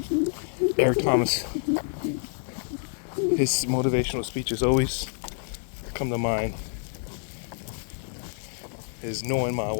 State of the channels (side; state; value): right; silent; digital silence